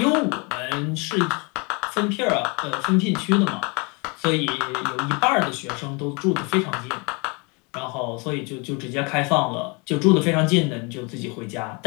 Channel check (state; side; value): quieter; right; 30.1 dB